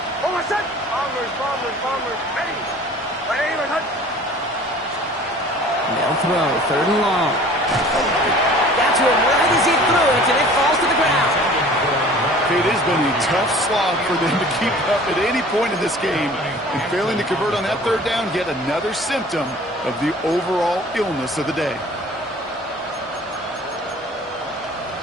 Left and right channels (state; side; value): normal; both; correlation 0.47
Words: They'll throw, 3rd and long. Got to him right as he threw it, and it falls to the ground. It has been a tough slog for them to keep up at any point in this game. And failing to convert on that 3rd down, yet another symptom of the overall illness of the day.